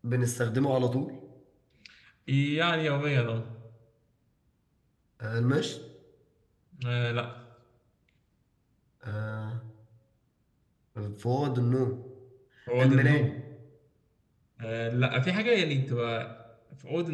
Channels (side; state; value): both; identical; correlation 1.00